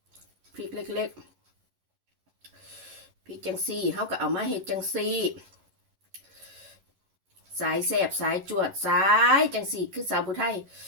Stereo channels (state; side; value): late; left; 11 ms